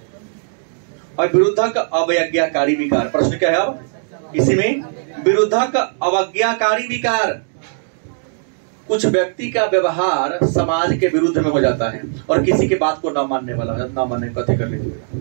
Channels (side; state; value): left; silent; digital silence